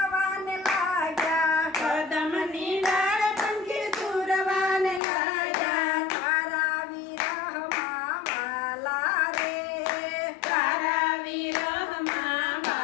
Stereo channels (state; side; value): drops out; right; at 5.0 s